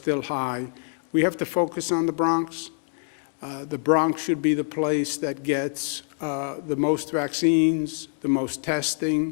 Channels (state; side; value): silent; right; digital silence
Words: high. We have to focus on the Bronx. The Bronx should be the place that gets the most vaccines, the most testing,